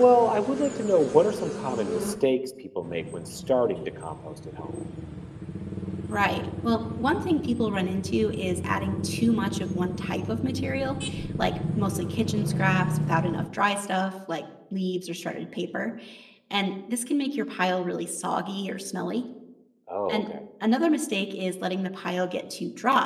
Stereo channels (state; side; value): identical; both; correlation 1.00